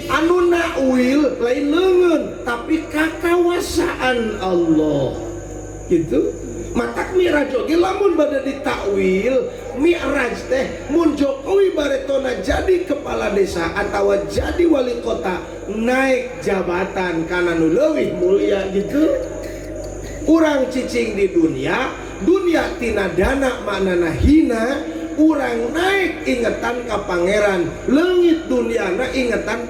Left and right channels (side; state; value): both; identical; correlation 1.00